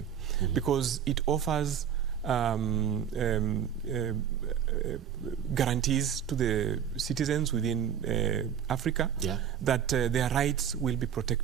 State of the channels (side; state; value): left; quieter; 8.7 dB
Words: because it offers guarantees to the citizens within Africa that their rights will be